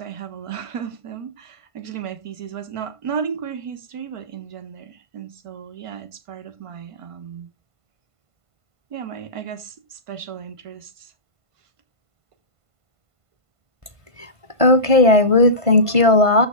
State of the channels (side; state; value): left; late; 1.5 ms